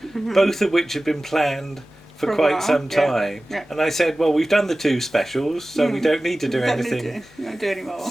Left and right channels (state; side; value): normal; both; correlation 0.97